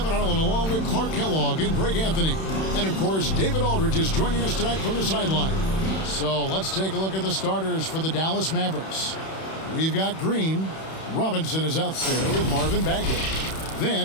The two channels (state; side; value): late; right; 31 ms